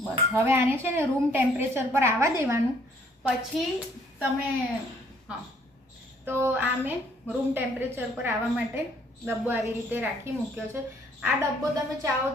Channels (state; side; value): normal; both; correlation 0.63